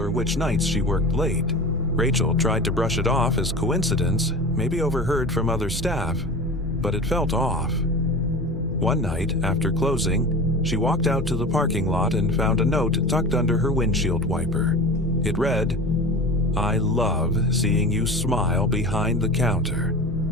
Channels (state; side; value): normal; both; correlation 0.33